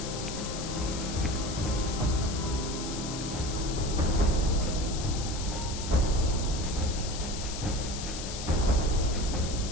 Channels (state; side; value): noise; left; hiss, 8 dB below the sound